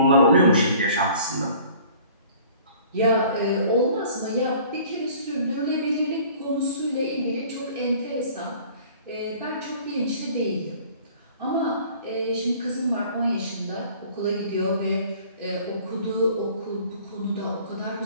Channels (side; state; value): both; inverted; correlation -0.50